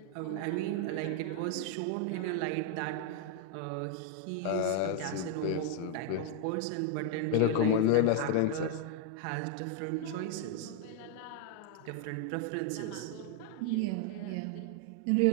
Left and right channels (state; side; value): different; both; correlation 0.00